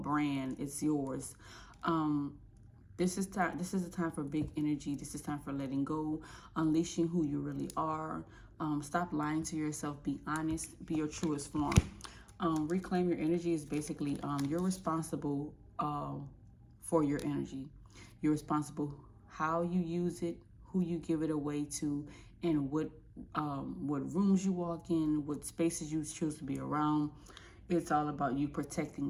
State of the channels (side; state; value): both; identical; correlation 1.00